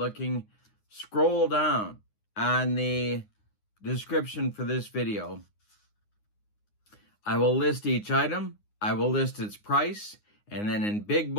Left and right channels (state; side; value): late; right; 9.6 ms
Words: scroll down on the description for this video. I will list each item, I will list its price, and then in big